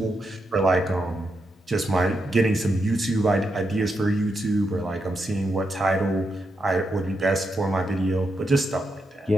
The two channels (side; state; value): both; normal; correlation 0.83